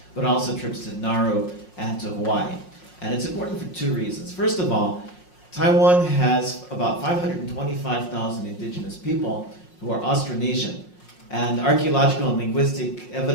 but also trips to Nauru and to Hawaii. And it's important for 2 reasons. First of all, Taiwan has about 525,000 indigenous people who are Austronesian. And archaeological and linguistic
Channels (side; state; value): right; late; 5.5 ms